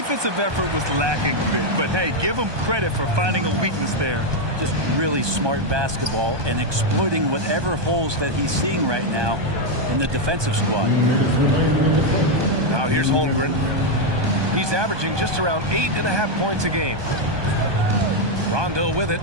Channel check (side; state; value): left; late; 1.2 ms